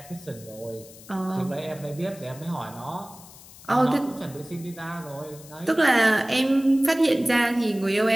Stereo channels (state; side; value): noise; left; hiss, 20 dB below the sound